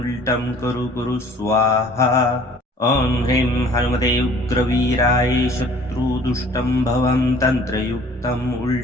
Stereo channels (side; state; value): both; normal; correlation 0.52